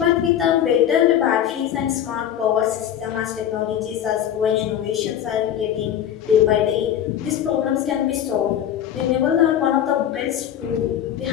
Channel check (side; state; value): right; quieter; 10.2 dB